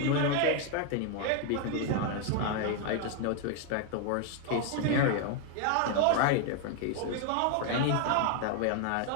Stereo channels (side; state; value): both; different; correlation 0.00